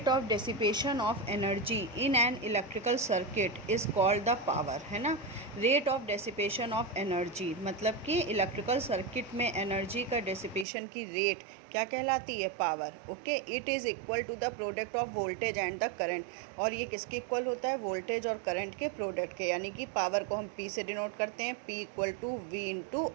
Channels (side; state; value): left; drops out; at 10.7 s